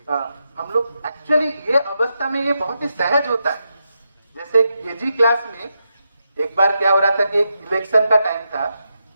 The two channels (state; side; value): inverted; both; correlation -0.86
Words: हम लोग एक्चुअली ये अवस्था में ये बहुत ही सहज होता है। जैसे केजी क्लास में एक बार क्या हो रहा था कि एक इलेक्शन का टाइम था,